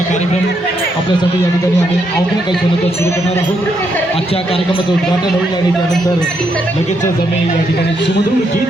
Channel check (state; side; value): normal; both; correlation 0.77